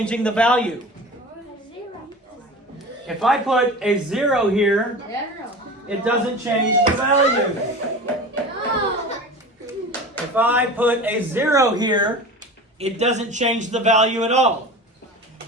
the value. If I put a 0 here, it doesn't change the value. If I put a 0 here, it doesn't change the value at all.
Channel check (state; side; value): normal; both; correlation 0.34